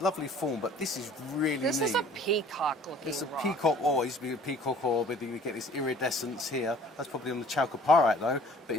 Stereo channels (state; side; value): normal; both; correlation 0.52